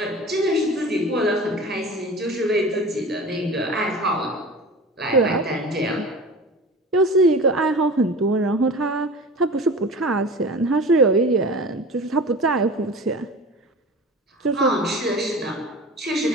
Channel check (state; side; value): normal; both; correlation 0.36